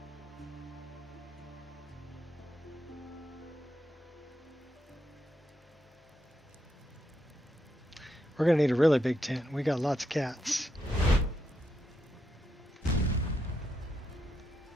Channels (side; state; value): both; normal; correlation 0.82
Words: We're going to need a really big tent. We got lots of cats.